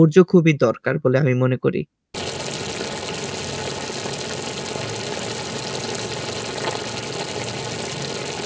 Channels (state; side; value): identical; both; correlation 1.00